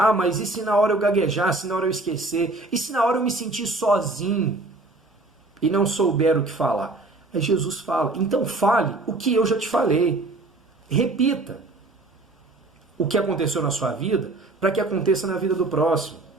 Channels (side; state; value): left; quieter; 3.1 dB